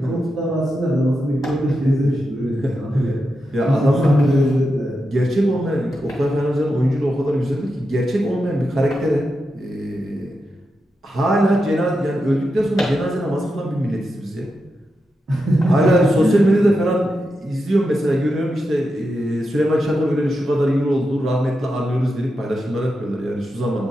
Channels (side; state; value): both; normal; correlation 0.88